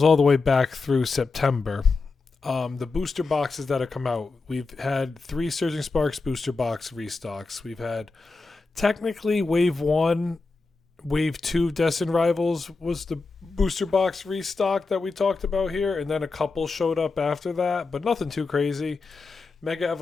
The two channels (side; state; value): right; quieter; 4.0 dB